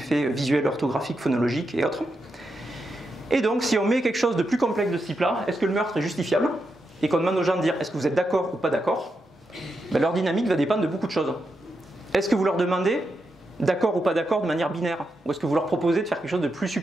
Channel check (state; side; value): normal; both; correlation 0.85